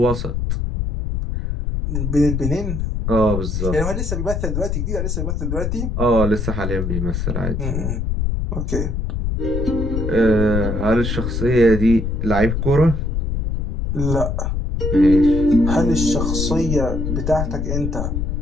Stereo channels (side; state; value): left; noise; rumble, 1 dB below the sound